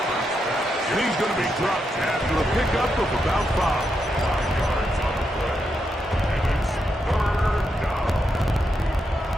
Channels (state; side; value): normal; both; correlation 0.83